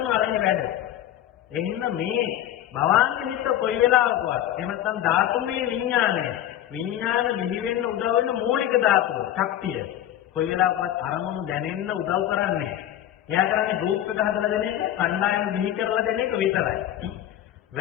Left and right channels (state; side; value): quieter; right; 12.0 dB